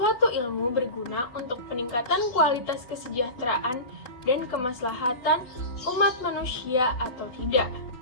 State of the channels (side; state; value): right; late; 3.8 ms